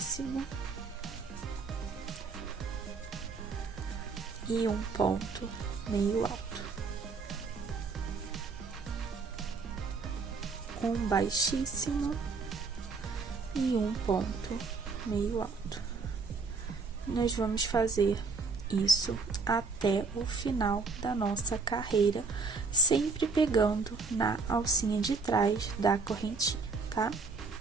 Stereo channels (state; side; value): quieter; left; 4.3 dB